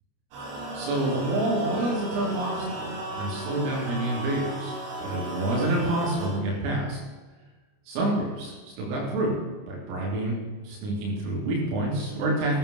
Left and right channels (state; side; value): late; left; 29 ms